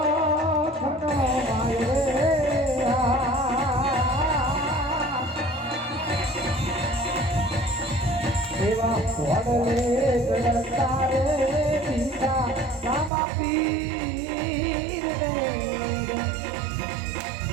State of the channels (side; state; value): left; drops out; at 13.1 s